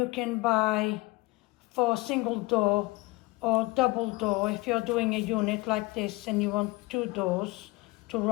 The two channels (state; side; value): quieter; right; 22.5 dB